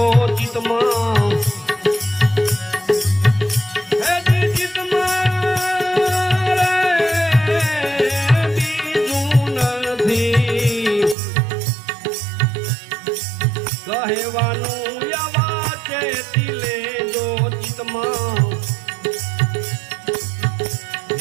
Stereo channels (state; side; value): drops out; left; at 11.2 s